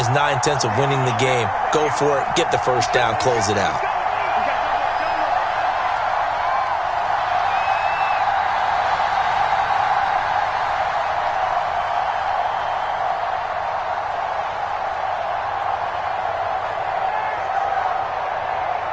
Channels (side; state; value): both; identical; correlation 1.00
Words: 9/10 of winning the game. Go for it, get the 1st down, close it out.